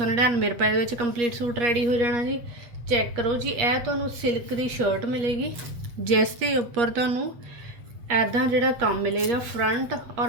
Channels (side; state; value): left; late; 8.4 ms